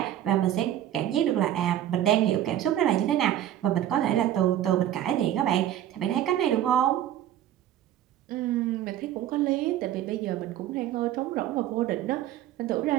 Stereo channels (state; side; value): quieter; left; 12.0 dB